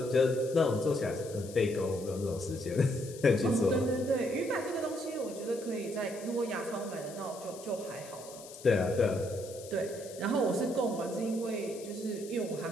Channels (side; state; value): left; noise; hiss, 17 dB below the sound